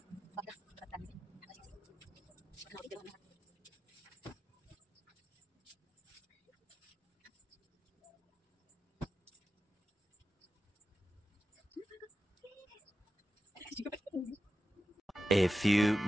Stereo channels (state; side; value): normal; both; correlation 0.91